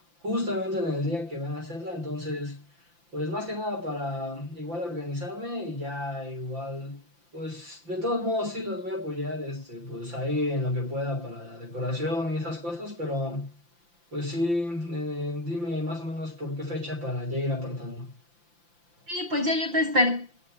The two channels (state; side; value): late; left; 5.8 ms